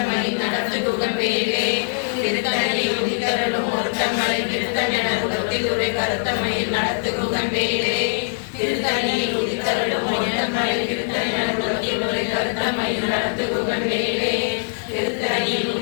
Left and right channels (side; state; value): right; silent; 60 dB below the other